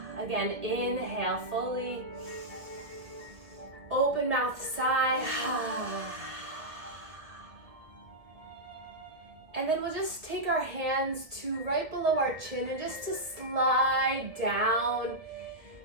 Again, inhale fully. Open mouth, sigh. And then we'll just take our hands to right below our chin and just to slide down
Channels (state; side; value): late; left; 1.7 ms